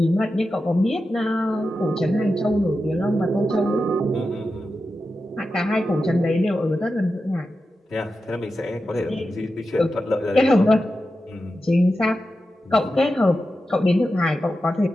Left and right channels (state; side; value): normal; both; correlation 0.91